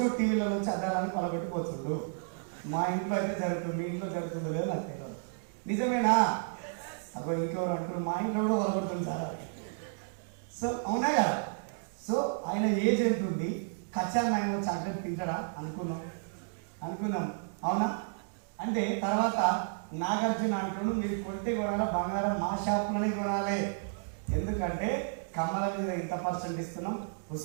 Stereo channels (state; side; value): silent; left; digital silence